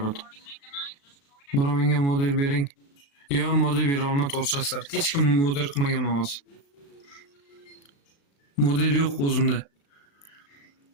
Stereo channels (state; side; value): late; right; 36 ms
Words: Bura menga model bering. Yo, model bera olma to'g'risizlar. Hech kim model qilmagan mavz. Model yo'q o'zimda.